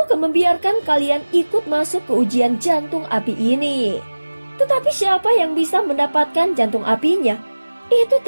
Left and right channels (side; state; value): both; inverted; correlation -1.00